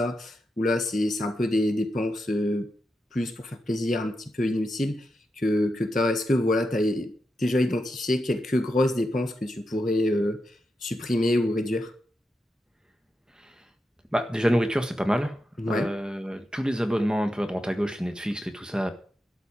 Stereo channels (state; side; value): normal; both; correlation 0.87